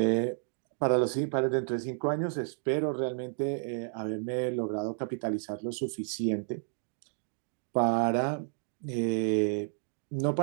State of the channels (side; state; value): left; silent; 57 dB below the other